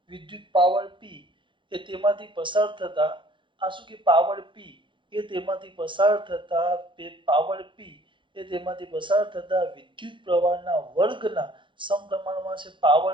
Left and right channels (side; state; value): left; late; 0.24 ms